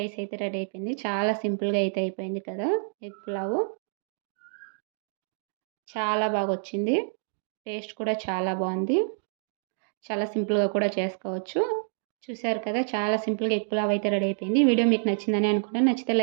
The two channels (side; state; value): left; silent; digital silence